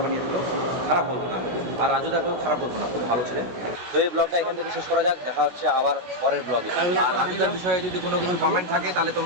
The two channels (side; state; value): left; late; 16 ms